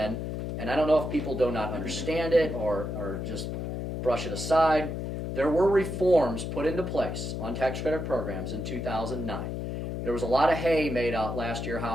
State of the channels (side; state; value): left; noise; hum, 4 dB below the sound